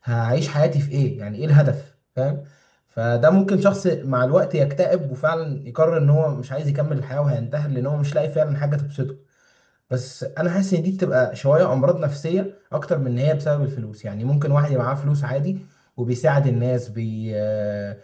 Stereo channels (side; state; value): both; identical; correlation 1.00